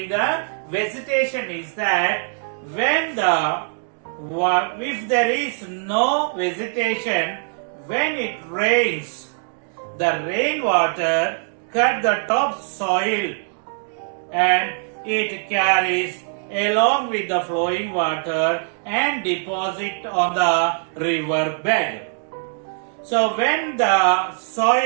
the vegetation is that when if there is no vegetation, when it rains, the rainwater cut the top soil and it carries along with the flowing water and deposit on the river bed. So when the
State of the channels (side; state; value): left; silent; 61 dB below the other